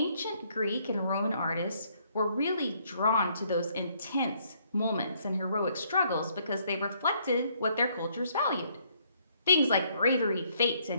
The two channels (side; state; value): both; inverted; correlation -0.68